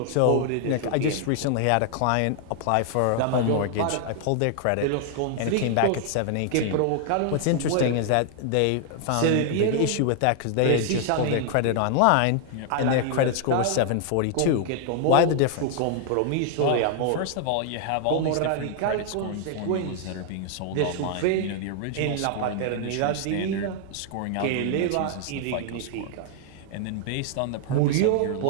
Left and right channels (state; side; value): different; both; correlation 0.00